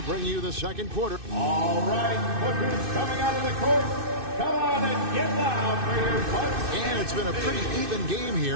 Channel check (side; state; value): left; late; 2.6 ms